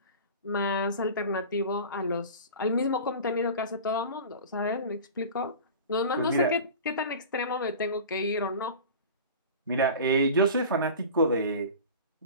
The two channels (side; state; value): both; inverted; correlation -0.35